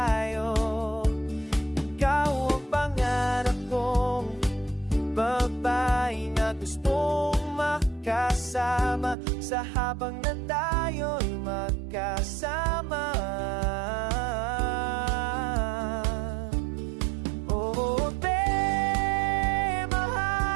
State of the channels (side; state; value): left; drops out; at 9.2 s